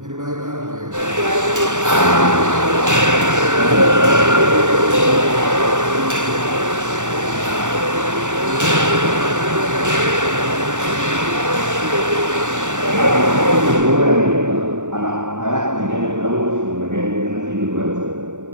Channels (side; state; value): left; late; 0.85 ms